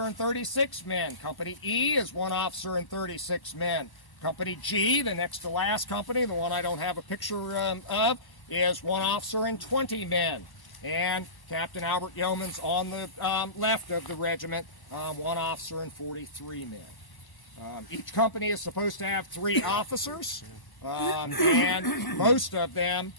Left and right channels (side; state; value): right; late; 1.0 ms